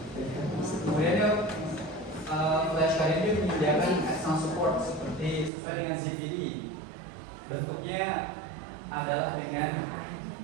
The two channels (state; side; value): drops out; left; at 5.5 s